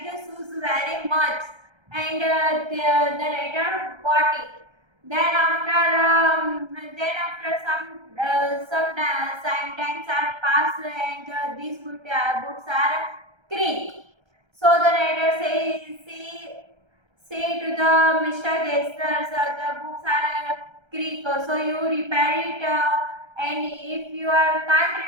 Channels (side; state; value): left; late; 1.3 ms